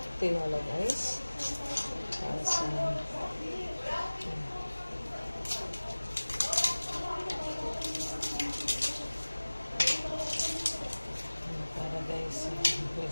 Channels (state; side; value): inverted; both; correlation -1.00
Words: tinola, guys. Para sa... para guys, may